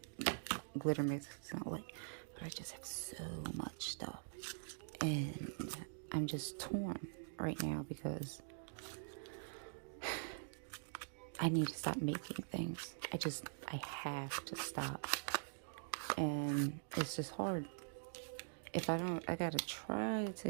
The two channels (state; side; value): silent; left; digital silence